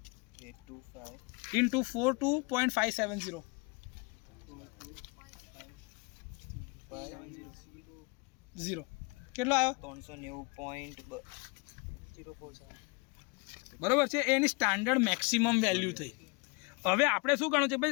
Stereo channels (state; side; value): quieter; right; 29.3 dB